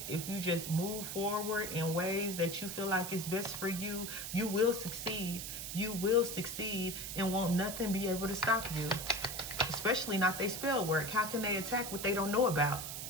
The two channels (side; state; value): right; noise; hiss, 6 dB below the sound